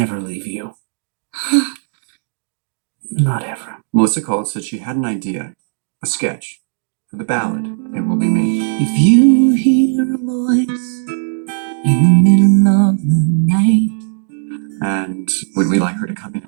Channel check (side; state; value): left; silent; digital silence